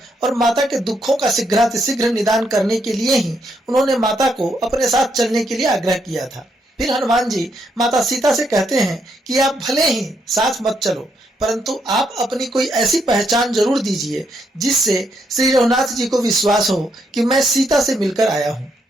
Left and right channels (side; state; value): both; normal; correlation 0.77